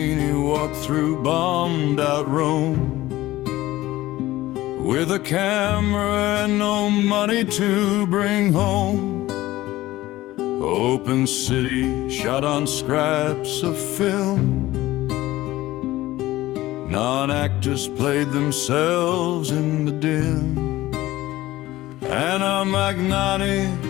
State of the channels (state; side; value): quieter; right; 16.7 dB